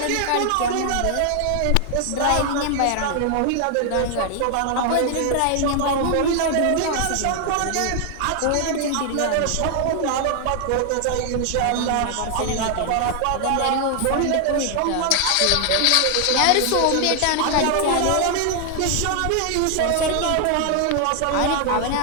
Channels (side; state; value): both; different; correlation 0.00